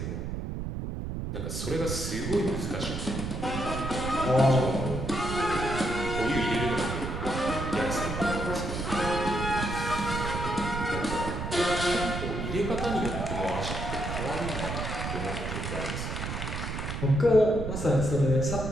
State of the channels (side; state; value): right; noise; rumble, 4 dB below the sound